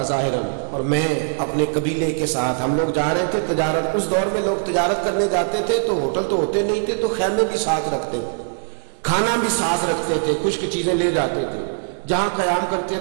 ظاہراً، اور میں اپنے قبیلے کے ساتھ، ہم لوگ جا رہے تھے تجارت، اس دور میں لوگ تجارت کرنے جاتے تھے تو ہوٹل تو ہوتے نہیں تھے، تو خیمے بھی ساتھ رکھتے تھے، کھانا بھی ساتھ رکھتے تھے، خشک چیزیں لے جاتے تھے، جہاں قیام کرتے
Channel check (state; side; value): silent; left; digital silence